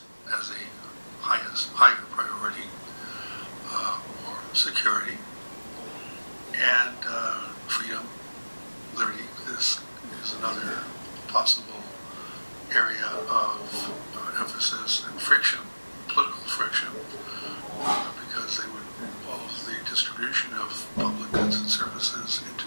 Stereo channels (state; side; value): inverted; both; correlation -1.00